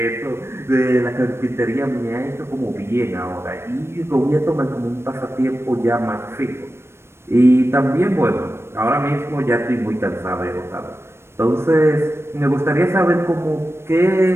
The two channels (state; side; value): late; left; 0.12 ms